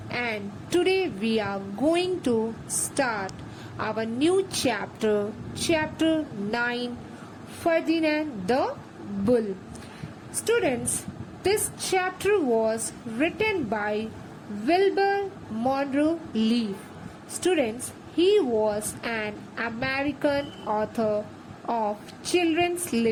and today we are going to start our new chapter, chapter 9, Ferdinand the Bull. Students, this chapter was written by Wilbur Monroe Leaf. Students, he was an American author of children's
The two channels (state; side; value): identical; both; correlation 1.00